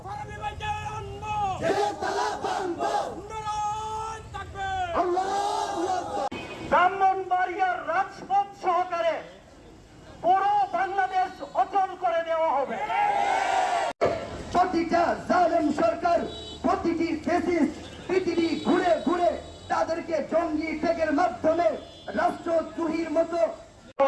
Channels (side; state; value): both; identical; correlation 1.00